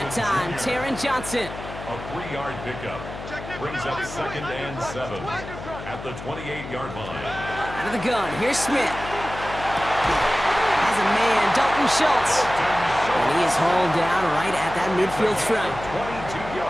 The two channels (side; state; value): left; noise; hum, 11 dB below the sound